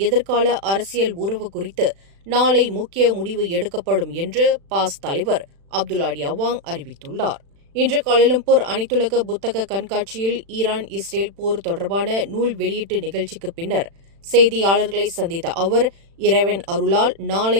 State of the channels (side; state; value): left; late; 36 ms